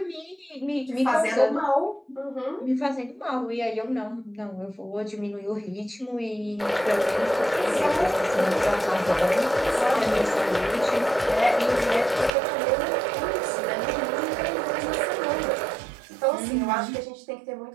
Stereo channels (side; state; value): left; drops out; at 12.3 s